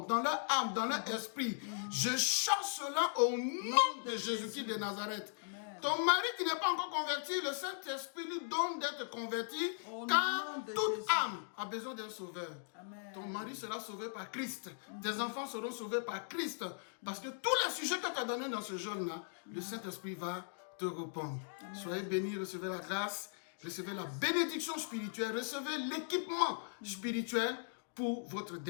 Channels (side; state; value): right; silent; digital silence